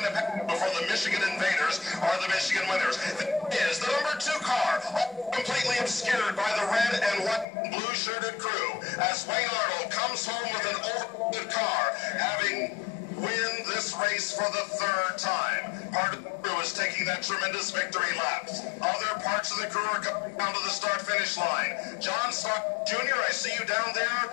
to pass before the Michigan Invaders are the Michigan winners. This is the number 2 car, completely obscured by the red and white and blue-shirted crew, as Wayne Arnold comes home with an overloaded car, having win this race for the 3rd time. Part of the crew is taking that tremendous victory lap. Other parts of the crew are coming down to the start-finish line. John Stark Jr., I see you down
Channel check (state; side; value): drops out; right; at 7.5 s